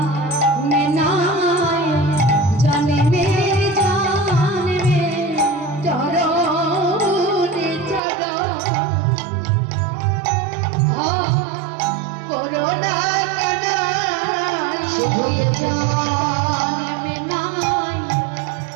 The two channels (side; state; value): left; drops out; at 8.0 s